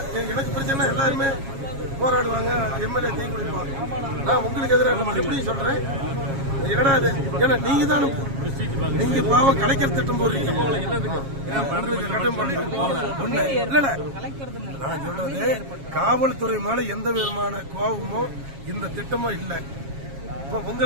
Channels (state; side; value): late; left; 7.3 ms